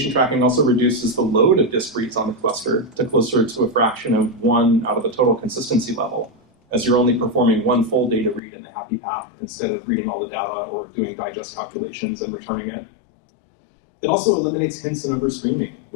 tracking also reduces the load of disk reads on the cluster to closer to a fraction of 1 out of the total consistency level, as you're only performing one full data read in the happy path instead of reading all the data or doing digest calculations and returning it. It also eliminates hints and overstreaming,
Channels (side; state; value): right; drops out; at 8.4 s